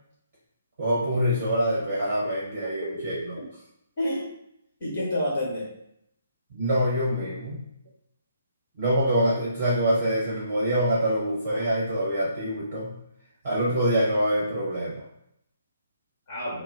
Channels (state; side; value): inverted; both; correlation -0.70